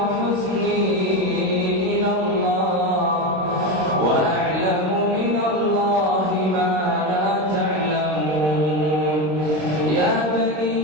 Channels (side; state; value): left; late; 26 ms